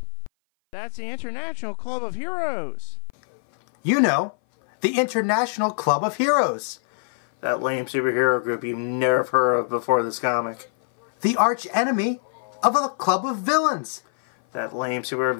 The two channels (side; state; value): right; silent; 57 dB below the other